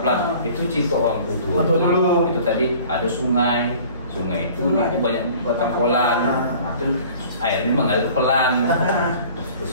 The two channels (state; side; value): inverted; both; correlation -0.48